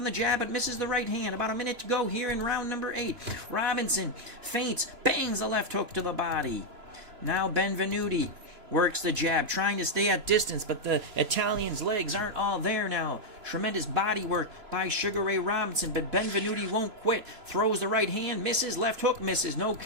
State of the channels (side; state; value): left; late; 2.9 ms